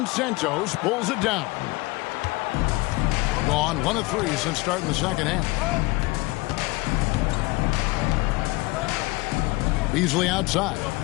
Santos pulls it down. Gone 1 of 3 since starting the second half. Beasley outside.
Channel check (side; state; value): right; quieter; 23.1 dB